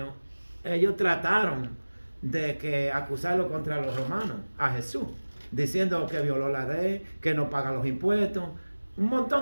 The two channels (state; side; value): inverted; both; correlation -1.00